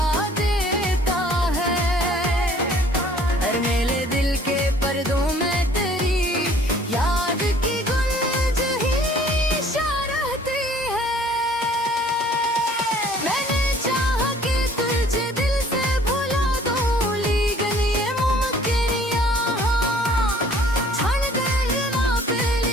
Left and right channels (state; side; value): normal; both; correlation 0.55